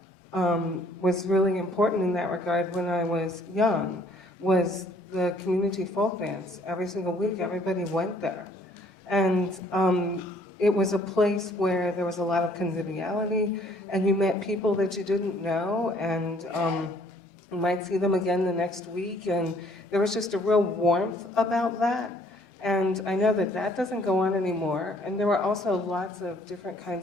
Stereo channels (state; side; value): normal; both; correlation 0.61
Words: was really important in that regard when I was young was the community folk dance. Every single week, everybody went there. And it was a place where there was a lot of conviviality, and you met people that you didn't know, and you might see them again the next week, and there was just a real warmth about that. And I know that that doesn't go on anymore. And there were also lots of different